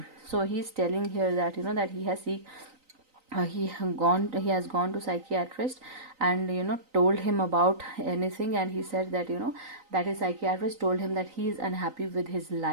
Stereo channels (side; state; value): left; late; 3.9 ms